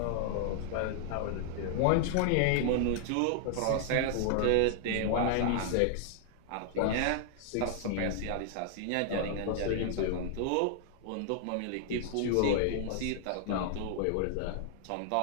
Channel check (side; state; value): both; different; correlation 0.00